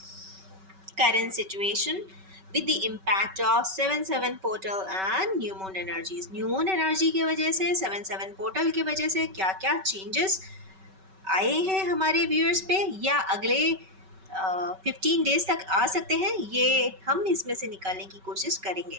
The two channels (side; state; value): left; late; 5.3 ms